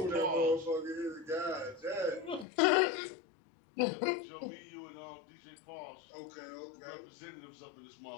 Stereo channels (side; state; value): right; drops out; at 2.5 s